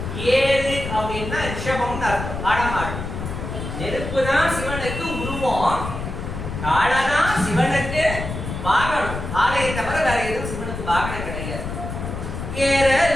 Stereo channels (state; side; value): noise; left; rumble, 6 dB below the sound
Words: ஏறு அப்படின்னா ரிஷபம்னு அர்த்தம், ஆடமாடு. நெருப்பு தான் சிவனுக்கு உருவம், காலதான் சிவனுக்கு வாகனம். ஆலையை தவிர வேற எதுவும் சிவனுக்கு வாகனம் கிடையாது.